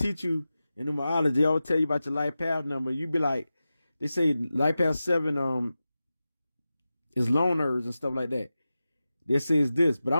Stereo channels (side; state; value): both; inverted; correlation -0.94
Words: you in numerology. They always tell you about your life path number. You be like, they say life path 7 is loners and stuff like that. They say it's this, but